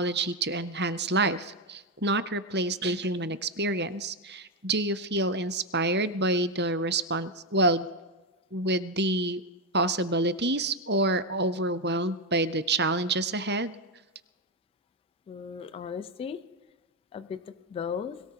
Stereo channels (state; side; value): normal; both; correlation 0.07